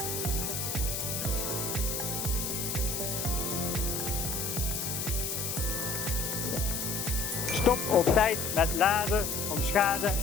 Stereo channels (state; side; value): noise; left; hiss, 3 dB below the sound